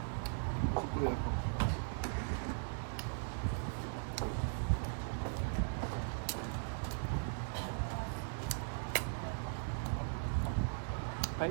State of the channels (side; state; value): left; silent; digital silence